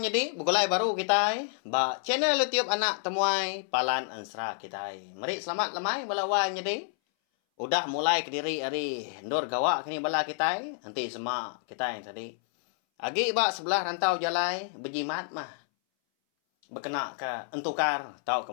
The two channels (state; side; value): silent; right; 58 dB below the other